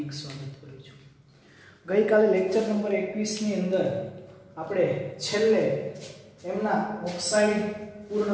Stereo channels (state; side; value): identical; both; correlation 1.00